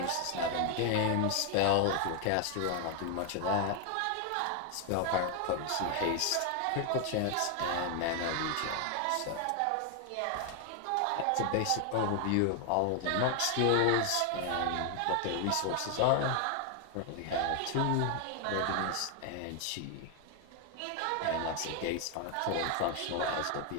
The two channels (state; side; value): different; both; correlation 0.01